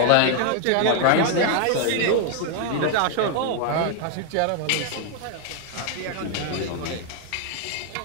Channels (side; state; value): both; different; correlation 0.00